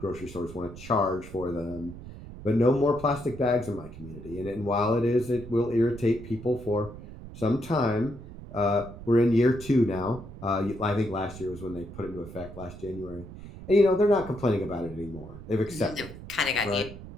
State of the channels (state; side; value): noise; right; rumble, 14 dB below the sound